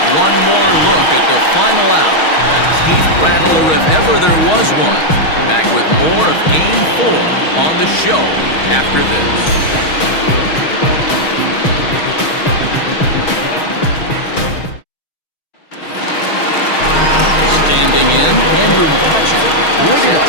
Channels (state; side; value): late; right; 6.3 ms